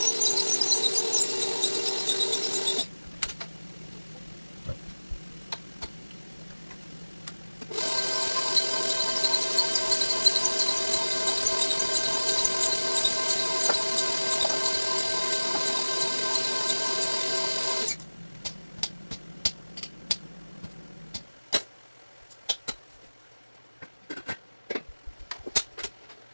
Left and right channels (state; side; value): inverted; both; correlation -1.00